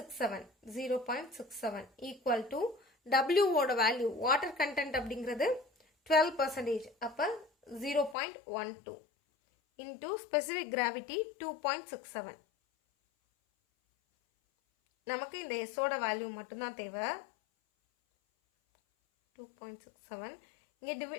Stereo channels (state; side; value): drops out; right; at 8.2 s